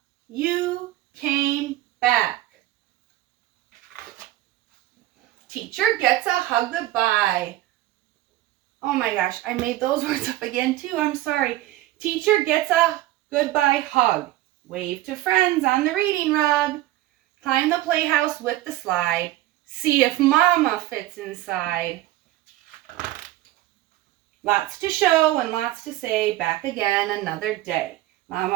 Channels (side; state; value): left; quieter; 15.7 dB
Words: you came back. Teacher gets a hug goodbye. Oh my gosh, I made those words up again too. I'm sorry. Teacher gets a goodbye hug. Wave to friends on the reading rug. Climb the playhouse with the slide. See if Mama fits inside. Lots to show and lots to say. Back again another day.